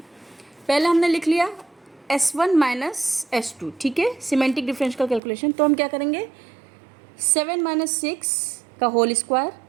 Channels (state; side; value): drops out; left; at 5.2 s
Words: पहले हमने लिख लिया S1 माइनस S2, ठीक है, सिमेंटिक डिफरेंस का कैलकुलेशन। तो हम क्या करेंगे, 7 माइनस 6 का होल स्क्वायर